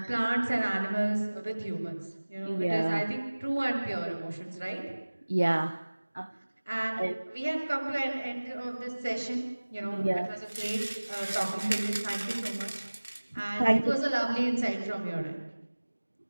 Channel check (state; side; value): inverted; both; correlation -1.00